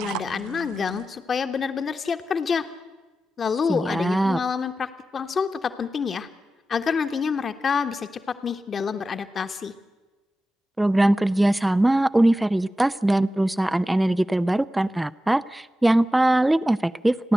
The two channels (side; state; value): both; normal; correlation 0.93